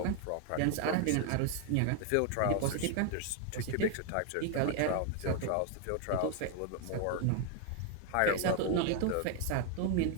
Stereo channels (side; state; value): both; different; correlation 0.00